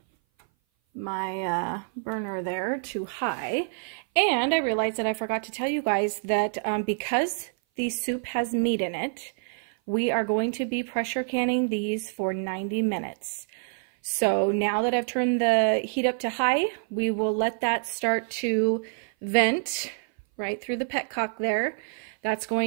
my burner there to high. And I realized that I forgot to tell you guys that because the soup has meat in it, we are going to be pressure canning these for 90 minutes. So now that I've turned the heat up to high, we will let that start to vent right through the petcock there. That's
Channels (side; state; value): left; silent; 57 dB below the other